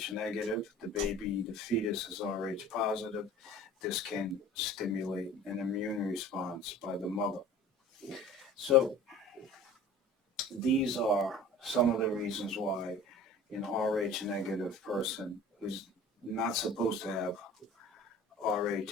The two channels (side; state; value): both; normal; correlation 0.43